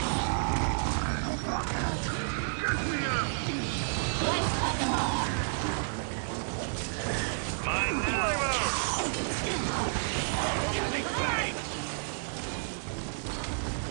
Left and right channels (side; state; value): left; silent; digital silence